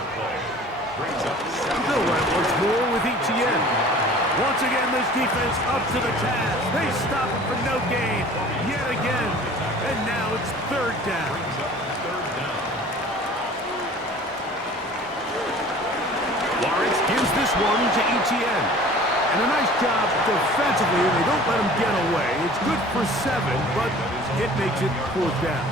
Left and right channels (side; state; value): both; normal; correlation 0.46